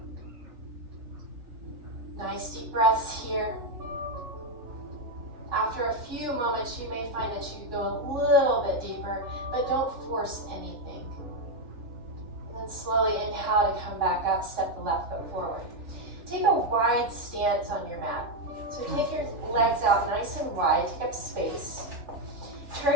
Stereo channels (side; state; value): left; late; 3.2 ms